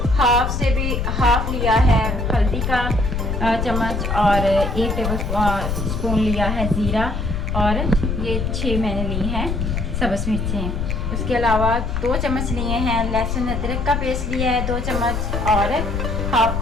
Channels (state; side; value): noise; left; rumble, 2 dB below the sound